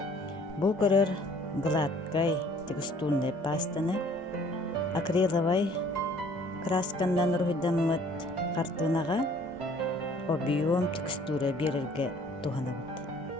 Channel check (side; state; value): both; normal; correlation 0.56